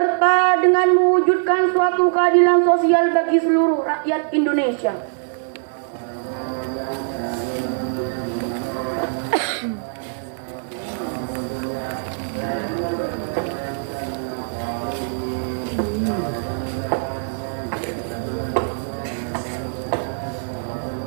dengan mewujudkan suatu keadilan sosial bagi seluruh rakyat Indonesia.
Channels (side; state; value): left; silent; digital silence